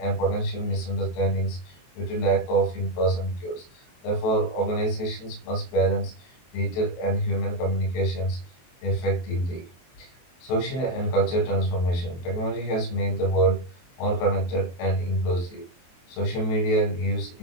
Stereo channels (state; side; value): late; right; 23 ms